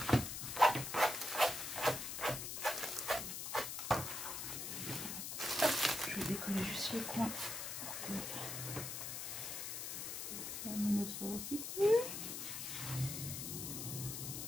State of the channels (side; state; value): left; noise; hiss, 5 dB below the sound